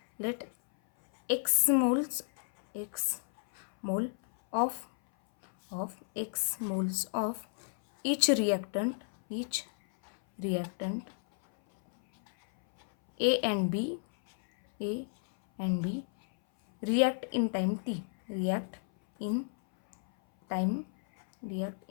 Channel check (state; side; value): silent; right; 57 dB below the other